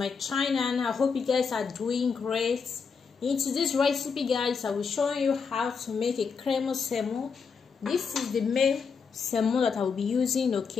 channel. I hope you guys are doing great. In today's recipe guys, I will show you how to make a creamy salmon. This is the main salmon that I will be using,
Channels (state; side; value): quieter; right; 5.6 dB